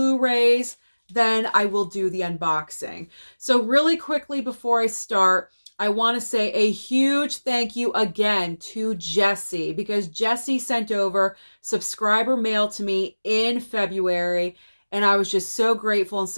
then I will do the unboxing. So really quickly before I start, I want to say a huge thank you again to Jessie because Jessie sent over subscriber mail to me in February. And I was just so grateful and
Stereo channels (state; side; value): inverted; both; correlation -1.00